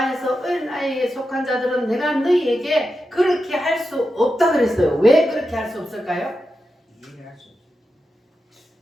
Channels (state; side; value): normal; both; correlation 0.89